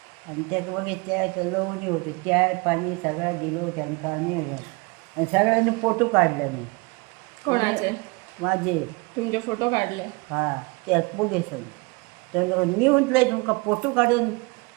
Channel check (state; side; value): quieter; left; 27.8 dB